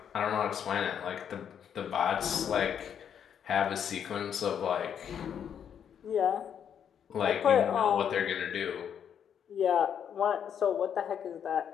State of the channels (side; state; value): right; quieter; 8.4 dB